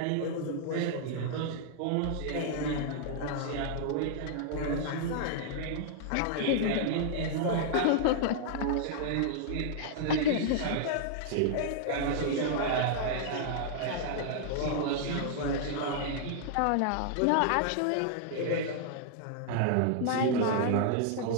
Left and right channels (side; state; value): both; different; correlation -0.01